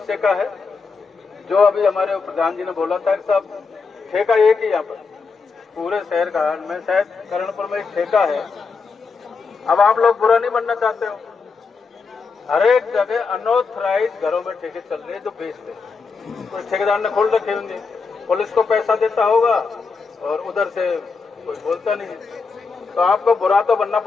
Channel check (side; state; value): right; quieter; 4.8 dB